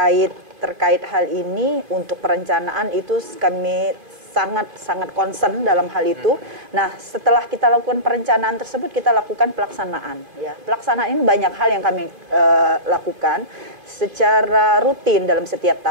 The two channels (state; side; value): late; left; 2.5 ms